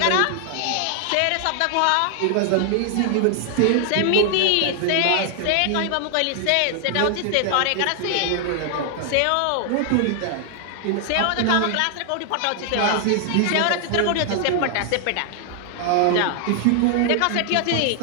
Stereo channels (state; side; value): different; both; correlation 0.00